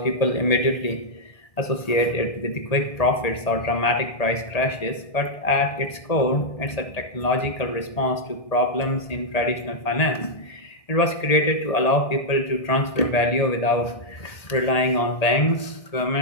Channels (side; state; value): right; late; 1.8 ms